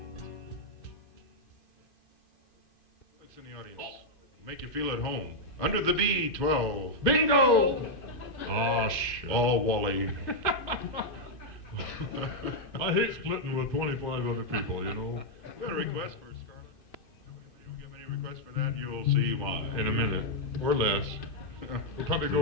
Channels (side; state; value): right; late; 2.5 ms